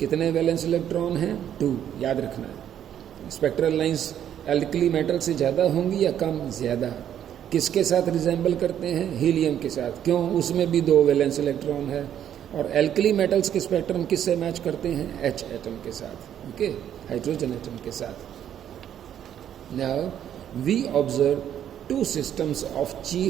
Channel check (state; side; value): quieter; left; 10.1 dB